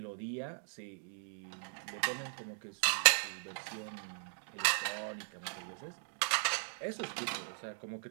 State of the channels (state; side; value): silent; left; digital silence